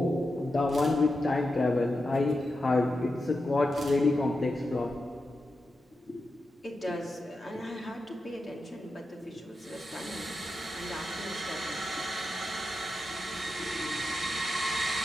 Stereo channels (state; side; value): normal; both; correlation 0.89